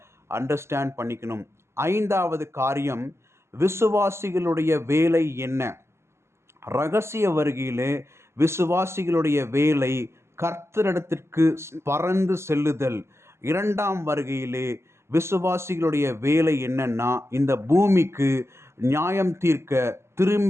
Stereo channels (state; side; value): late; left; 0.13 ms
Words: அண்டர்ஸ்டாண்ட் பண்ணிக்கணும். ஐந்தாவது காரியம், விசுவாசிகளுடைய வேலை என்ன? ரகசிய வருகையிலே விசுவாசிகளுடைய வேலை கர்த்தரிடத்திற்கு பறந்து செல்லுதல். இரண்டாம் வருகையிலே விசுவாசிகளுடைய வேலை என்னன்னா, இந்த பூமிக்கு நியாயம் தீர்க்க